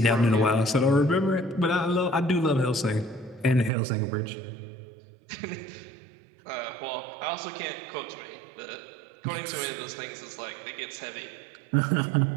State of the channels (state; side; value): drops out; left; at 3.7 s